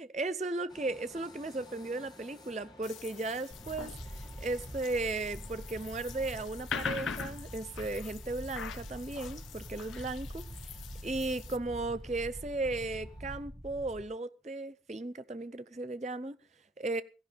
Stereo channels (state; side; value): normal; both; correlation 0.58